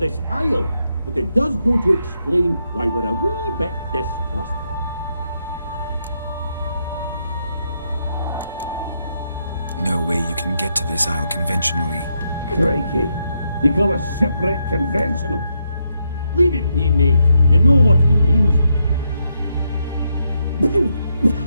isle, but it does go to explain why we're a wee bit distrustful. No way you can get to this isle conventionally. Crikey, you call a shipwreck conventional? Leave it be, mate. You know what he means.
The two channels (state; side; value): inverted; both; correlation -0.80